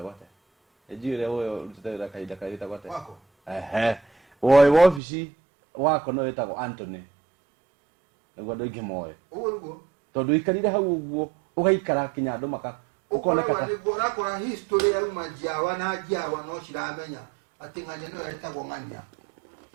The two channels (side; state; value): left; drops out; at 5.0 s